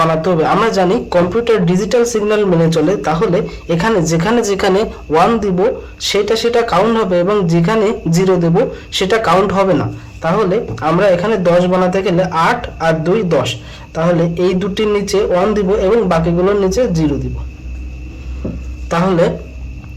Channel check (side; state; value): both; identical; correlation 1.00